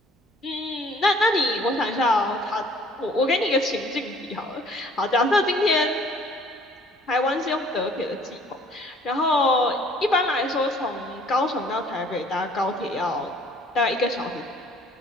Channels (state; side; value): normal; both; correlation 0.55